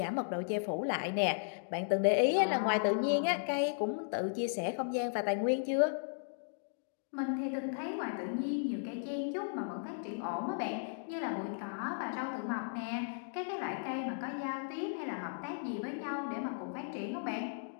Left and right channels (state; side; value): silent; right; digital silence